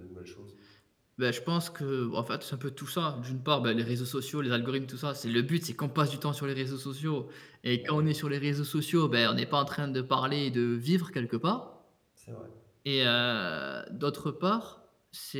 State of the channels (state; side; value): identical; both; correlation 1.00